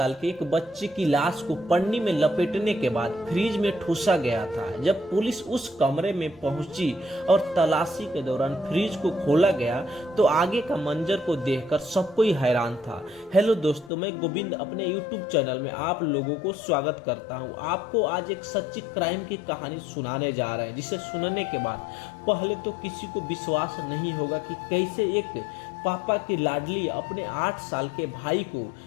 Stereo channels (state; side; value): drops out; right; at 13.9 s